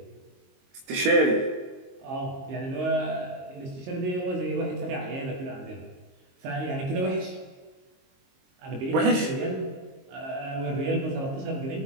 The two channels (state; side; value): late; left; 22 ms